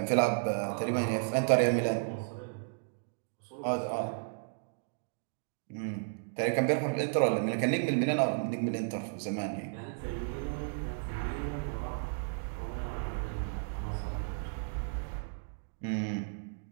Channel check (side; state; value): left; silent; digital silence